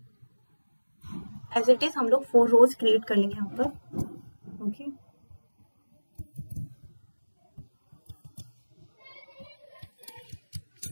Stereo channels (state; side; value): inverted; both; correlation -1.00